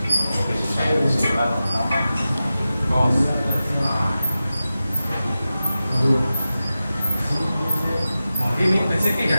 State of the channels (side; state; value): both; inverted; correlation -0.94